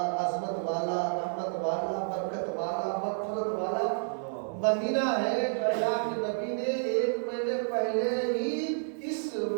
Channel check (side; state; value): left; silent; 58 dB below the other